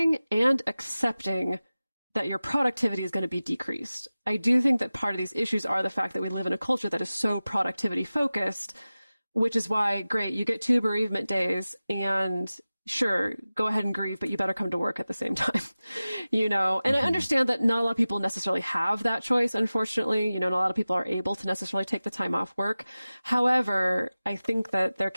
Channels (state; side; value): inverted; both; correlation -0.97